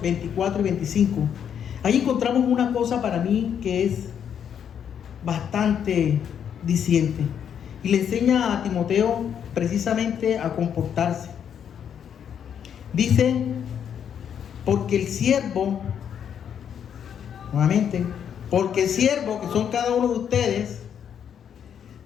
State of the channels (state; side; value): quieter; right; 8.5 dB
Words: 24 y 25. Ahí encontramos una cosa para mí que es bastante diciente. Y le enseña a Timoteo precisamente a comportarse. Dice, porque el siervo, nuevamente, porque el siervo, que son cada uno de ustedes,